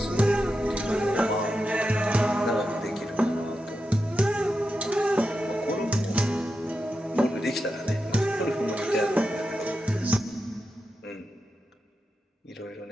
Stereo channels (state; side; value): normal; both; correlation 0.88